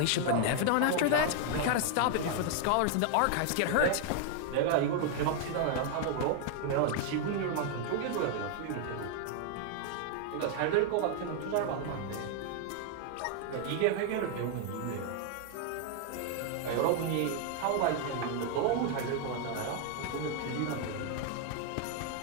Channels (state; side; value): different; both; correlation 0.00